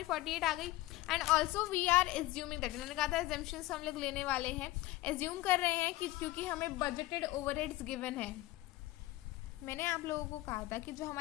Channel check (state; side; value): quieter; right; 17.7 dB